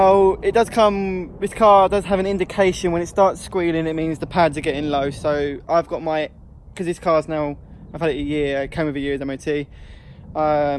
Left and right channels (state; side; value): identical; both; correlation 1.00